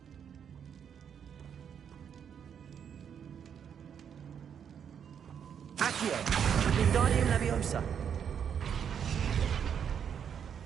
Accio. Wingardium Leviosa.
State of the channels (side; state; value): left; quieter; 8.0 dB